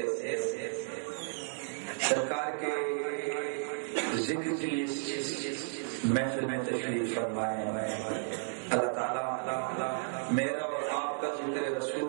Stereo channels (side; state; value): left; silent; digital silence